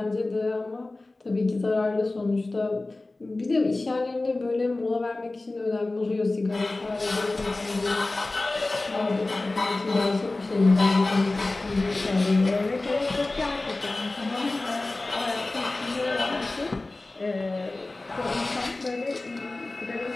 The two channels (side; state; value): right; quieter; 3.1 dB